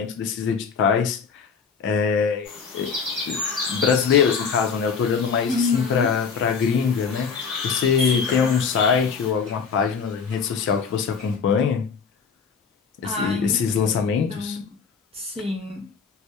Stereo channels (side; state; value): right; quieter; 5.8 dB